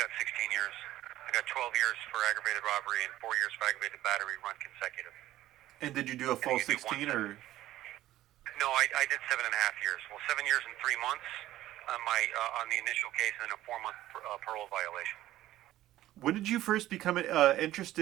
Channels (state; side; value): quieter; left; 14.7 dB